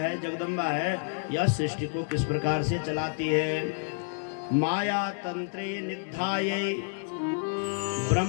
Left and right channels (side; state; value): right; silent; digital silence